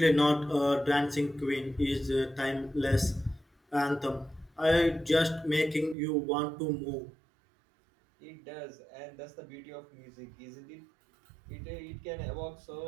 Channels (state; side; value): drops out; left; at 6.0 s